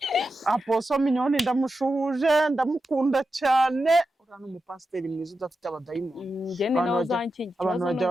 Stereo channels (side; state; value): both; normal; correlation 0.90